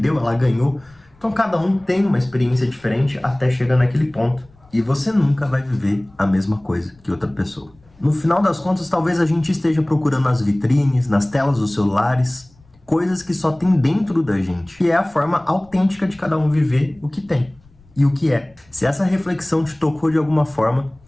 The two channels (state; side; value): noise; left; rumble, 29 dB below the sound